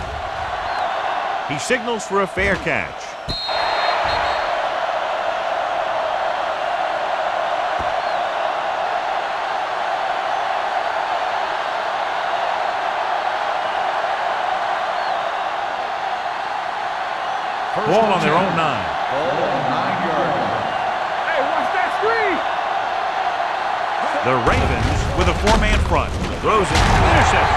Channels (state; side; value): identical; both; correlation 1.00